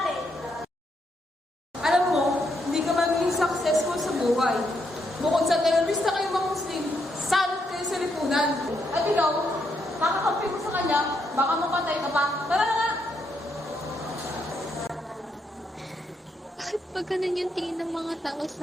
Alam mo, hindi ka magiging successful sa buhay. Bukod sa terorista kayong mga Muslim, salot kayo sa lipunan. At ikaw, makakampi mo sa kanya, baka mapatay ka pa. Tara na nga! Bakit ba ganun yung tingin ng mga tao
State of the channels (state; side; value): normal; both; correlation 0.78